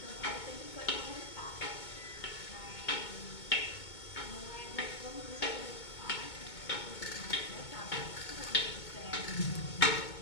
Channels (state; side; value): late; right; 2.2 ms